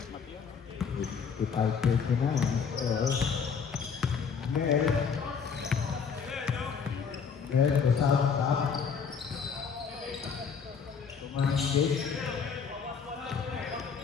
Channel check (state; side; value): quieter; right; 6.2 dB